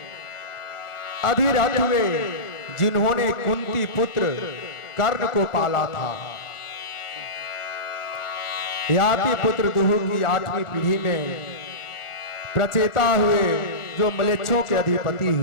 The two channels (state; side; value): late; right; 1.4 ms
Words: अधिरथ हुए, जिन्होंने कुंती पुत्र कर्ण को पाला था। याति पुत्र दुहु की 8वीं पीढ़ी में प्रचेता हुए, जो मलेच्छों के अधिपति